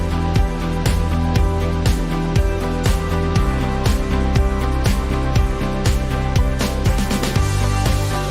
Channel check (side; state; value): both; identical; correlation 1.00